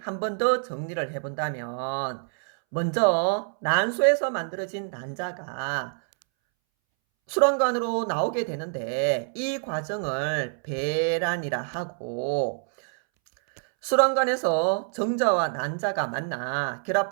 한 번 더 정리를 해본다면 먼저 난소에서 만들어진 난자가 수란관으로 나오게 되는데 이 과정을 배란이라 하고, 수란관에서 정자와 난자가 만나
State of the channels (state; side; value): silent; left; 61 dB below the other